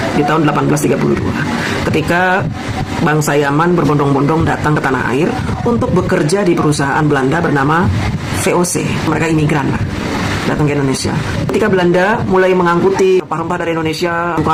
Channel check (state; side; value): identical; both; correlation 1.00